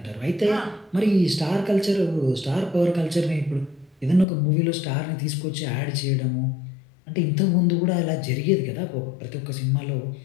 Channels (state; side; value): drops out; right; at 4.2 s